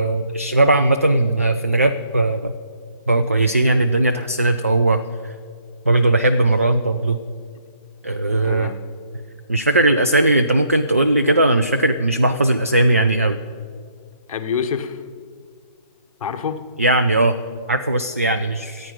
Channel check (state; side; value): inverted; both; correlation -0.67